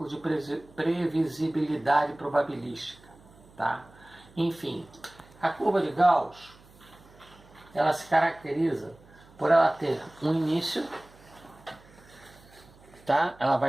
de previsibilidade probabilística, tá? Enfim, a curva de Gauss, ela se caracteriza por ela ter um início, tá? Ela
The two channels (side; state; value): right; noise; hum, 25 dB below the sound